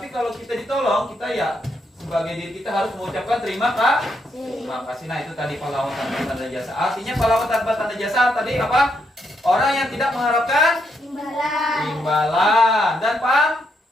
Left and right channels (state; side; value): normal; both; correlation 0.78